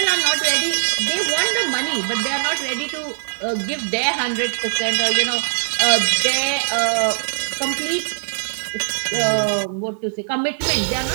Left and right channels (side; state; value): left; silent; digital silence